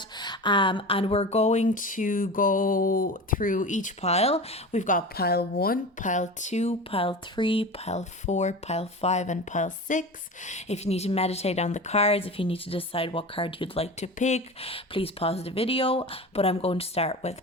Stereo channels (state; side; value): normal; both; correlation 0.31